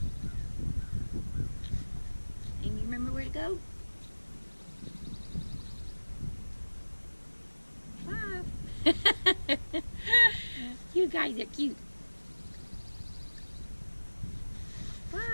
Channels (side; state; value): both; inverted; correlation -1.00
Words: And you remember where to go? 5. You guys are cute.